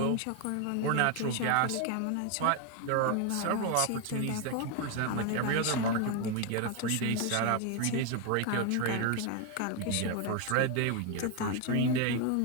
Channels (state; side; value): different; both; correlation 0.01